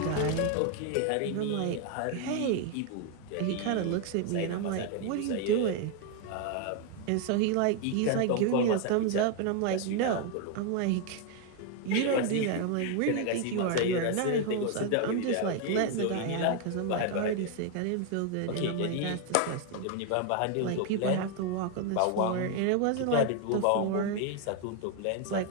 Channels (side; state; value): both; different; correlation 0.01